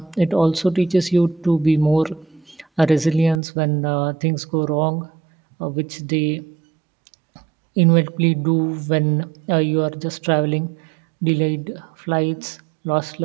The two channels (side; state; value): left; drops out; at 3.4 s